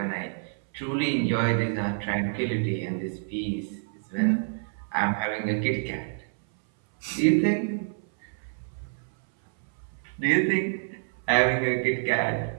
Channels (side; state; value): left; silent; 60 dB below the other